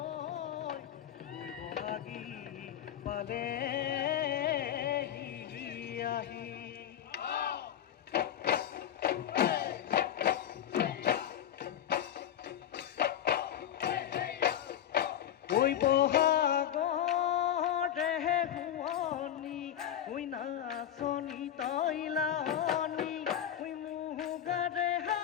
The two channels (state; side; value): quieter; right; 10.6 dB